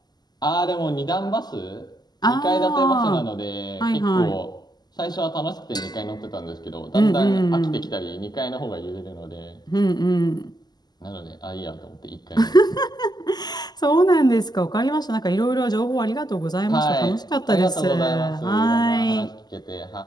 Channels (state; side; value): late; right; 0.20 ms